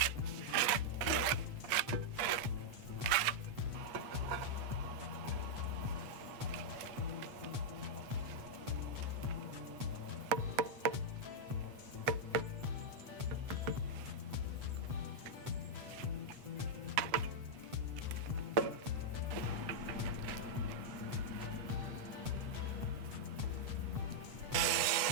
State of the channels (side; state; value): left; late; 8.1 ms